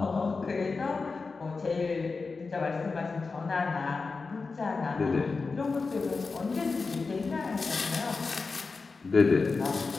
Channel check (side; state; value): right; quieter; 4.3 dB